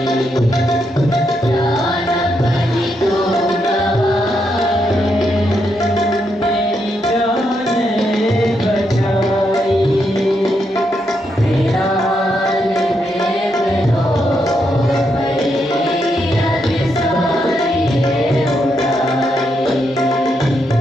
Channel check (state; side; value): normal; both; correlation 0.80